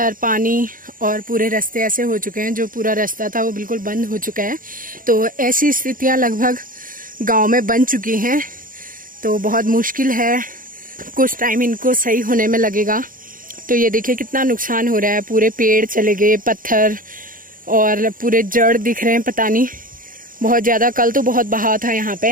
पानी और पूरे रास्ते ऐसे हो चुके हैं। जो पूरा रास्ता था वो बिल्कुल बंद हो चुका है। तो ऐसी स्थितियां लगभग गांव में बन चुकी हैं। तो बहुत मुश्किल है, कुछ टाइम इनको सही होने में लगेगा। तो ये देखिए कितना नुकसान हो रहा है। पूरे पेड़ चले गए, पत्थर और पूरे जड़ दिख रहे हैं, पता नहीं बहुत ज़्यादा। कल तो बहुत बहाव था यहाँ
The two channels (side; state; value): left; late; 0.40 ms